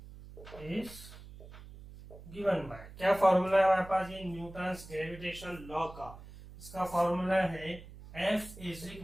is given by, क्या फॉर्मूला है हमारे पास, ये न्यूटन्स ग्रेविटेशन लॉ का, इसका फॉर्मूला है F =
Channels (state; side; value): noise; right; hum, 16 dB below the sound